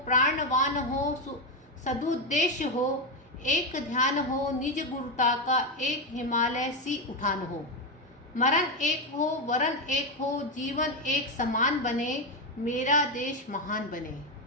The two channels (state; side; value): normal; both; correlation 0.08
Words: प्राणवान हो, सदुद्देश्य हो, एक ध्यान हो, निज गुरुता का, एक हिमालय सी उठान हो। मरण एक हो, वरण एक हो, जीवन एक समान बने, मेरा देश महान बने।